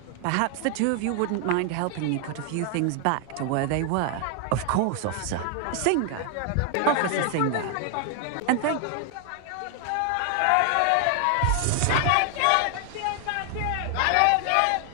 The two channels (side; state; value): both; different; correlation 0.00